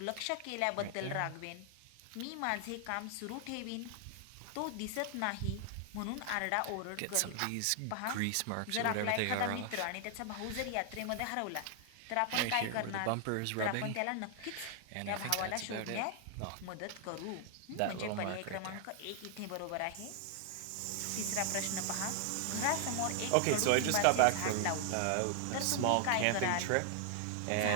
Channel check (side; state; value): both; different; correlation 0.00